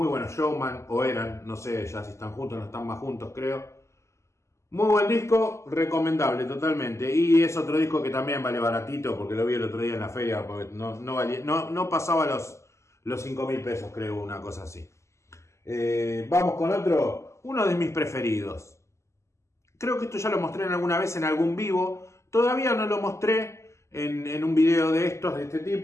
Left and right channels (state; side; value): late; right; 0.13 ms